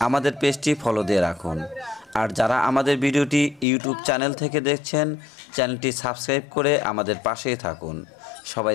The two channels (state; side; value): drops out; right; at 3.7 s